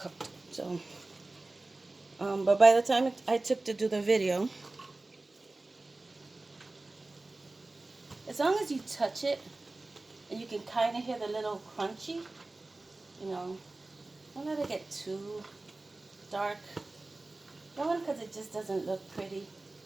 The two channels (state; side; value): quieter; left; 3.1 dB